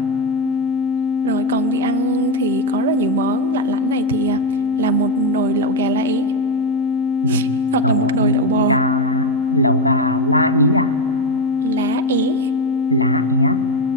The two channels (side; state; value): both; normal; correlation 0.10